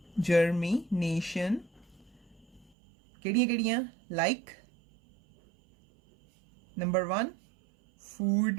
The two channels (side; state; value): left; drops out; at 2.7 s